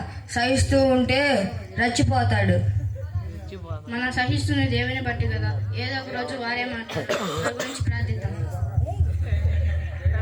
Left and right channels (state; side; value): identical; both; correlation 1.00